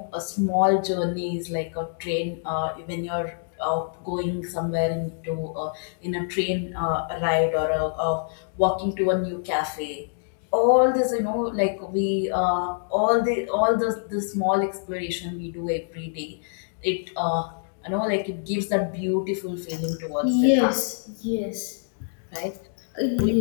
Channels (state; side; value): silent; right; digital silence